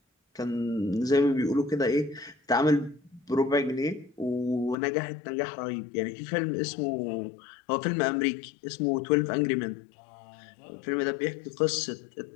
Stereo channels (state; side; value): drops out; right; at 4.8 s